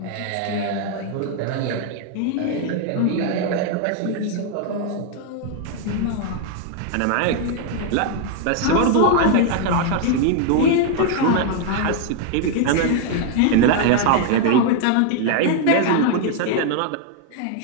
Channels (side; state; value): both; different; correlation 0.00